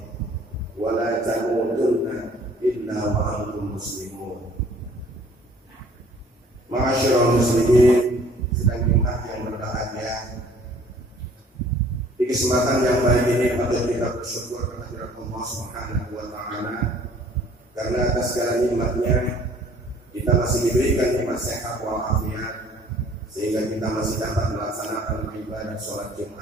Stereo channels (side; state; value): both; normal; correlation 0.55